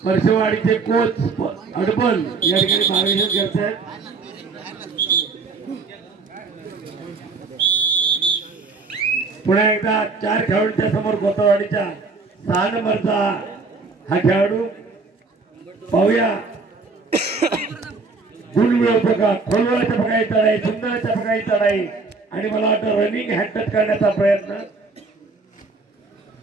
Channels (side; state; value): left; quieter; 4.1 dB